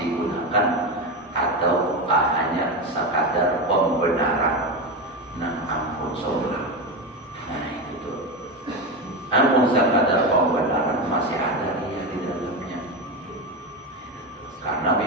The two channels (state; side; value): normal; both; correlation 0.16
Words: atau hanya sekadar pembenaran? Nah ampun saudara, nah itu tuh, ampun sekadar pembenaran masih ada riya di dalamnya. Karena